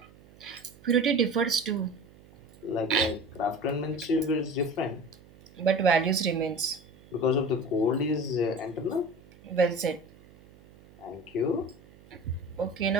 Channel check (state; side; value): noise; right; hum, 24 dB below the sound